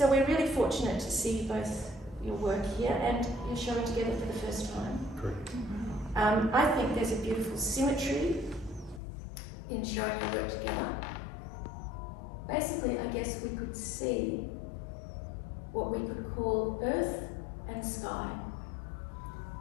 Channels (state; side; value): drops out; right; at 9.0 s